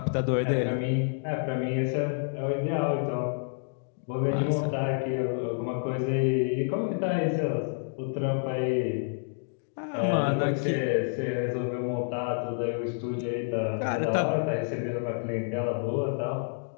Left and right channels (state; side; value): silent; right; digital silence